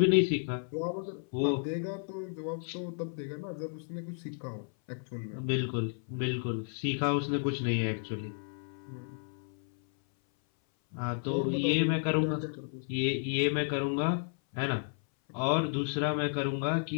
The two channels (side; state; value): right; silent; 56 dB below the other